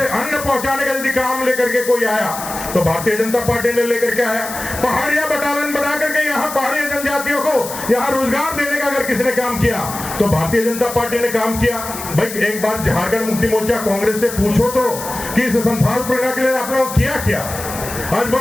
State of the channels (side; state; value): left; noise; hiss, 10 dB below the sound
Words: अन्न पहुंचाने का यदि काम लेकर के कोई आया तो भारतीय जनता पार्टी ने लेकर के आया। पहाड़िया बटालियन बना करके यहाँ पहाड़ी जनजातियों को यहाँ रोजगार देने का अगर किसने काम किया तो भारतीय जनता पार्टी ने काम किया। भाई एक बार झारखंड मुक्ति मोर्चा कांग्रेस से पूछो तो कि इस संथाल परगना के लिए आपने किया क्या? आज